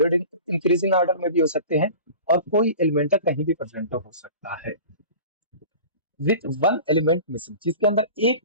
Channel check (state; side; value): inverted; both; correlation -0.39